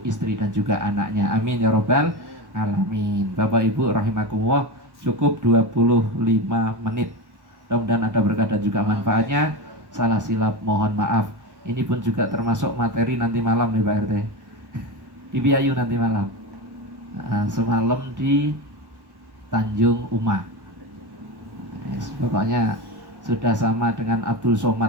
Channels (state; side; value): late; left; 1.1 ms